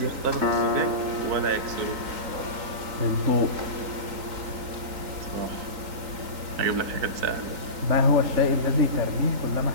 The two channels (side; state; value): left; late; 3.8 ms